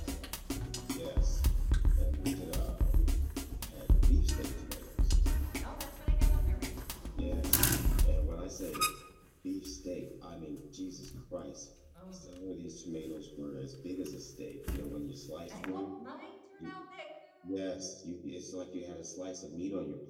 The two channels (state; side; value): identical; both; correlation 1.00